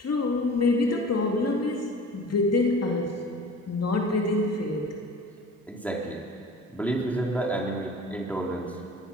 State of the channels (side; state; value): both; normal; correlation 0.42